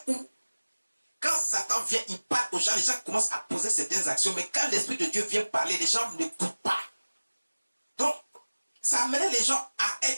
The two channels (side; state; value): both; inverted; correlation -1.00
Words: où, quand Satan vient, il parle aux gens, les gens commencent à poser certaines actions, mais quand l'Esprit de Dieu vient parler, les gens n'écoutent pas. Donc, ça amenait les gens à